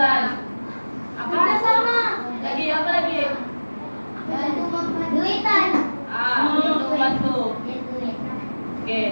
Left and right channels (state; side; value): inverted; both; correlation -1.00